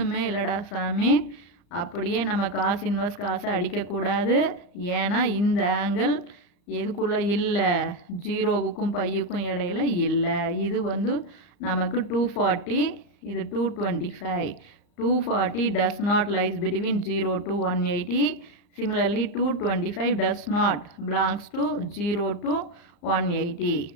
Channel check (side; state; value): right; late; 35 ms